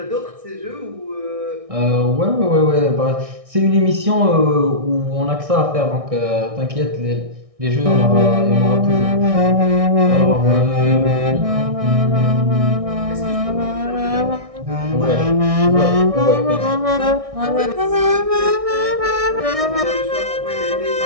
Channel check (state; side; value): late; left; 1.6 ms